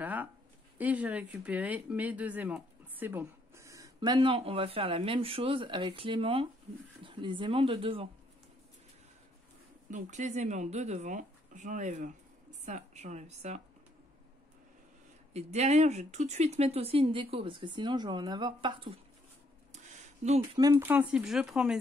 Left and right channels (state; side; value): normal; both; correlation 0.70